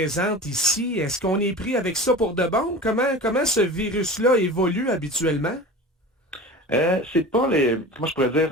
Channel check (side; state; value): both; normal; correlation 0.35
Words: ici, est-ce qu'on est pris avec ça pour de bon? Comment ce virus-là évolue habituellement? C'est pas moi je pourrais